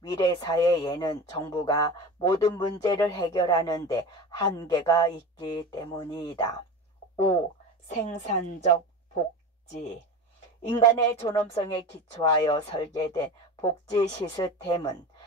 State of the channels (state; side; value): normal; both; correlation 0.30